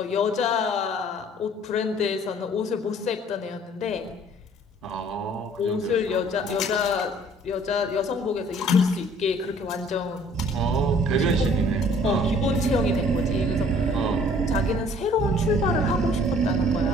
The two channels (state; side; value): normal; both; correlation 0.55